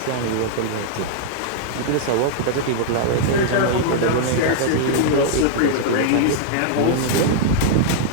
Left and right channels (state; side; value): different; both; correlation -0.01